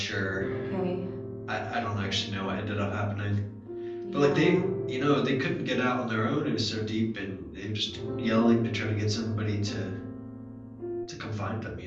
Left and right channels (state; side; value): identical; both; correlation 1.00